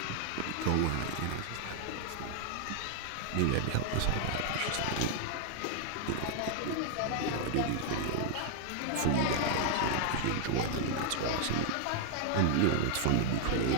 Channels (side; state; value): both; different; correlation -0.01